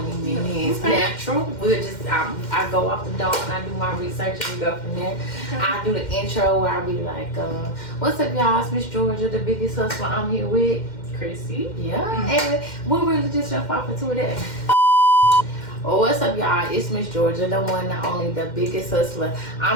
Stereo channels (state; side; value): late; right; 2.1 ms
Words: minutes. Natural. We'll just I go off the dome and I do my research and we go from there. I do the intro where I be like, what's up y'all, it's Miss Georgia, the biggest hustler. I'm here with Chrissy. Yeah, and we'll really just jump off into that. Oh, what's up y'all, it's Miss Georgia, the one, not only, the biggest hustler.